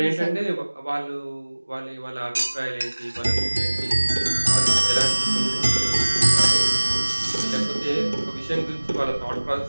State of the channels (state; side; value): inverted; both; correlation -1.00